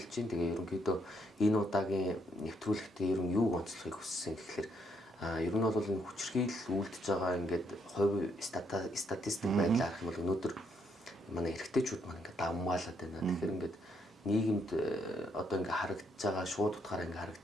байна. Тэгээ ерөнхийдөө энэ удаагийн нэвтрүүлэгтээ ер нь юуг онцлохыг хүссэн гэхээр ер нь бол энэ хүчирхийлэл үлдэж байгаа ингээд хувь статистик байдлаар харах юм бол өнөөдөр манай эрэгтэйчүүд маань ингээд давмгаалаад байна. Тэгэхээр ингээд нийгэмд одоо ингээд харагдаж байгаа шууд утгаараа ингээд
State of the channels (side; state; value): both; normal; correlation 0.73